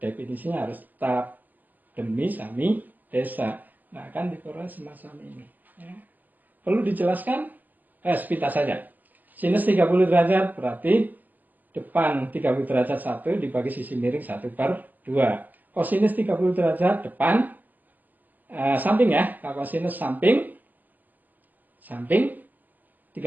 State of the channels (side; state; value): left; late; 0.084 ms